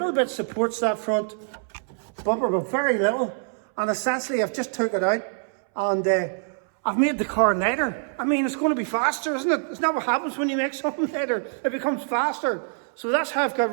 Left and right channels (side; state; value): left; silent; 62 dB below the other